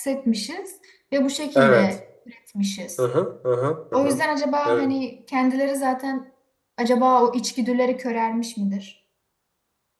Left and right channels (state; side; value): identical; both; correlation 1.00